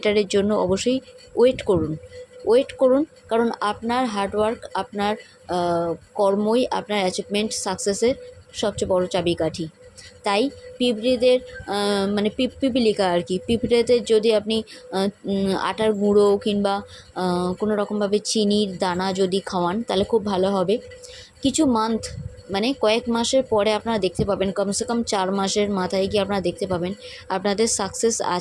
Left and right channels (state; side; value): identical; both; correlation 1.00